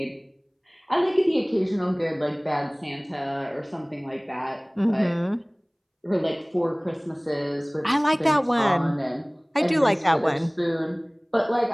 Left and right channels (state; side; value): identical; both; correlation 1.00